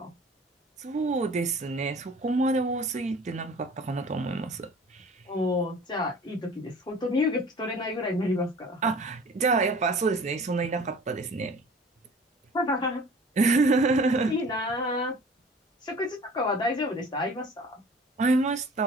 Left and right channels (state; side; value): normal; both; correlation 0.45